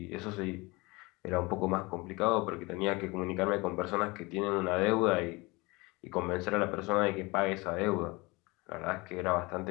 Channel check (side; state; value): right; quieter; 24.5 dB